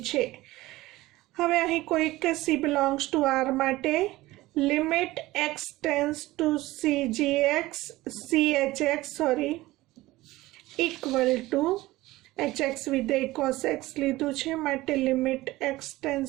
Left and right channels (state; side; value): quieter; left; 18.3 dB